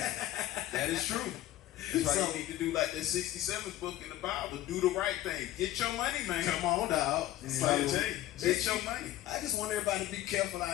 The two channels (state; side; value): quieter; right; 14.5 dB